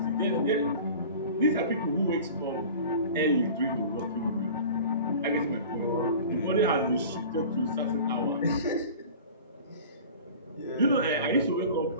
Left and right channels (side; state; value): both; inverted; correlation -0.40